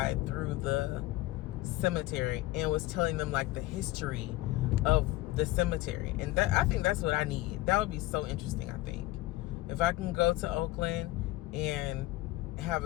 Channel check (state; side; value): quieter; right; 17.8 dB